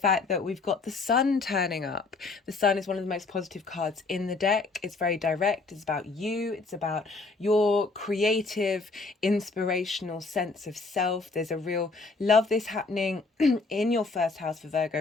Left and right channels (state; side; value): quieter; right; 3.8 dB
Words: that we've got the sun turning up. The sun is one of the most positive cards in the deck. It's very direct. It's about you. It's about your creative, inspirational sense of self. There's a real love this happening in your first house for